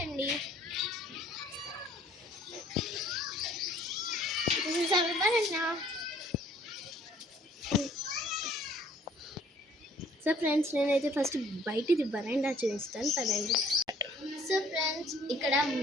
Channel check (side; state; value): both; normal; correlation 0.58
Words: సో ఫ్రెండ్స్, నేనైతే ఫస్ట్ బయటిది బరాండా చూపిస్తాను పదండి. సో ఫ్రెండ్స్, ఇక్కడ